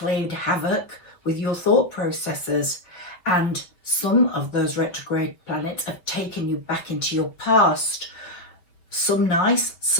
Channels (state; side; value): late; right; 5.8 ms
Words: havoc with your thought processes, and some of those retrograde planets have taken you back into your past. Some nice,